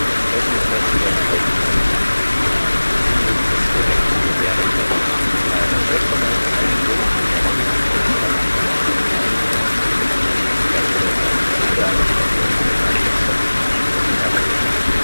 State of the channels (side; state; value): both; inverted; correlation -1.00